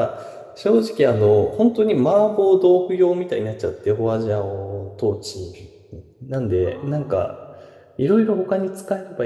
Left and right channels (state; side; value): identical; both; correlation 1.00